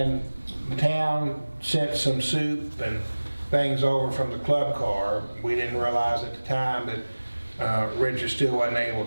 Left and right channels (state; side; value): inverted; both; correlation -1.00